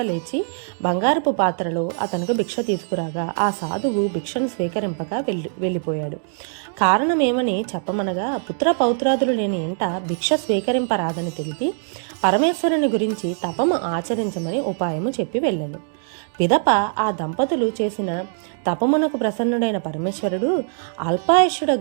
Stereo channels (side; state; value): left; silent; digital silence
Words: లేచి బంగారపు పాత్రలో అతనికి భిక్ష తీసుకురాగా ఆ సాధువు భిక్షను స్వీకరింపక వెళ్ళిపోయాడు. కారణమేమని చెప్పమనగా పుత్ర పౌత్రాదులు లేని ఇంట భిక్ష స్వీకరింపరాదని తెలిపి పరమేశ్వరుని గురించి తపము ఆచరించమని ఉపాయము చెప్పి వెళ్ళాను. పిదప ఆ దంపతులు చేసిన తపమునకు ప్రసన్నుడైన పరమేశ్వరుడు